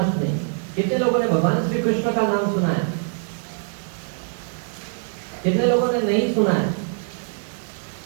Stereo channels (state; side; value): silent; left; 63 dB below the other